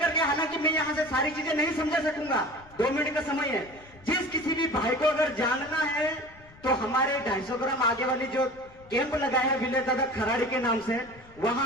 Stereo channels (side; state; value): left; noise; rumble, 24 dB below the sound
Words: के, हालांकि मैं यहां से सारी चीजें नहीं समझा सकूंगा, 2 मिनट का समय है। जिस किसी भी भाई को अगर जानना है तो हमारे 250 ग्राम आगे वाली जो कैंप लगाया है विलेज दादा खराड़ी के नाम से,